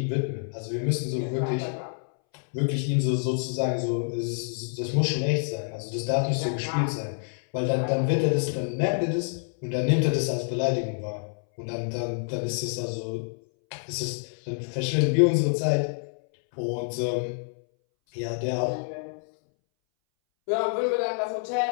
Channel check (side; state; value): right; silent; 60 dB below the other